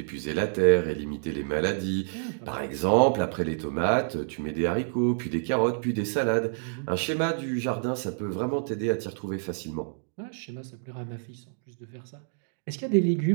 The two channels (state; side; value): silent; left; digital silence